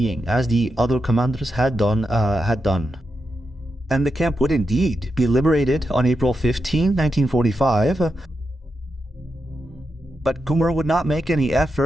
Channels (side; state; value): both; normal; correlation 0.86